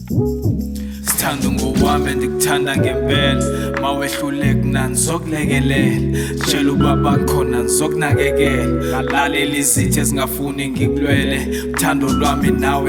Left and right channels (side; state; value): both; identical; correlation 1.00